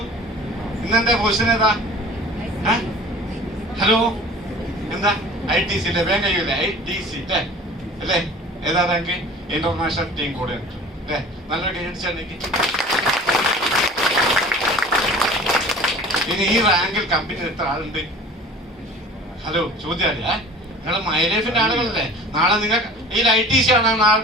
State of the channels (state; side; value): normal; both; correlation 0.43